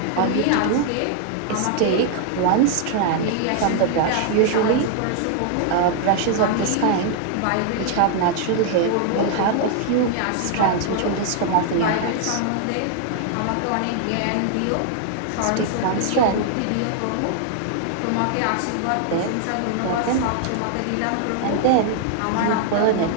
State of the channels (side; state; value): both; different; correlation 0.00